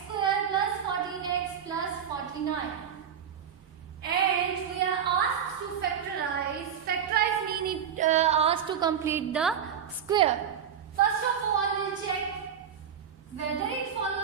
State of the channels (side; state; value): left; quieter; 8.3 dB